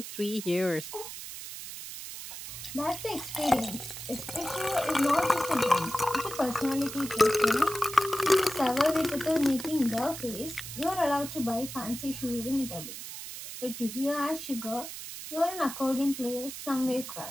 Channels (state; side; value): noise; right; hiss, 10 dB below the sound